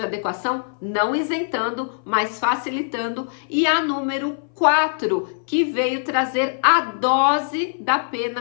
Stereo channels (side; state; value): right; silent; 59 dB below the other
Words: adequação, não isentando, mas facilitando, e a número 4, que veio trazer a dose da